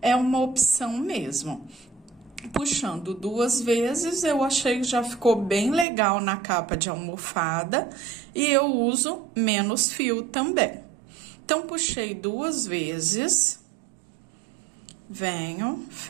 é uma opção mesmo. Puxando 2 vezes, eu achei que já ficou bem legal na capa de almofada, e eu uso menos fio também. Então, puxei 2 vezes, venho,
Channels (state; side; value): drops out; left; at 5.9 s